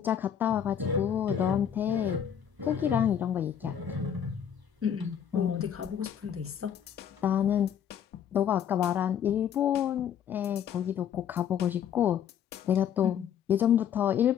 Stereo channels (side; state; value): right; quieter; 8.9 dB